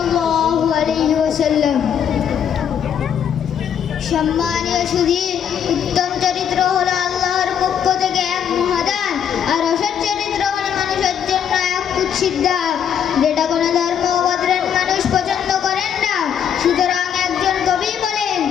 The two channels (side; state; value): right; quieter; 8.6 dB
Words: আলাইহি ওয়াসাল্লাম। সম্মানীয় সুধী, উত্তম চরিত্র হলো আল্লাহর পক্ষ থেকে এক মহাদান, আর অসৎ চরিত্র হলো মানুষের জন্য এক কুৎসিত দাগ, যেটা কোনো ধর্ম ও গোত্রের মানুষ পছন্দ করেন না। সুতরাং একজন কবি বলেন,